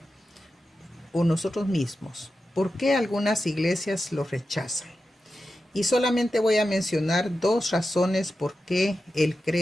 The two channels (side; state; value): both; normal; correlation 0.91